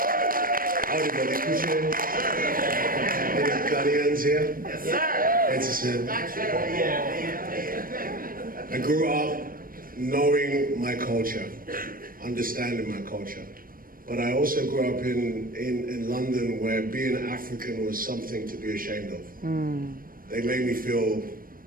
Howdy, buddy. Any Ghanaians here? Yes, sir. I grew up knowing my culture, understanding my culture. But I also grew up in London, where being African was something to be ashamed of. They made me feel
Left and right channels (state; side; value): late; left; 0.41 ms